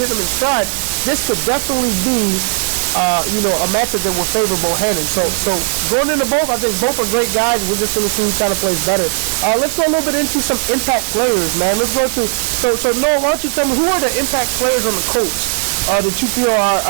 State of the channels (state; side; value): silent; left; digital silence